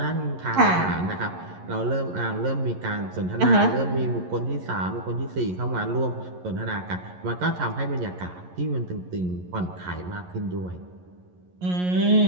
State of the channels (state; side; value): late; left; 11 ms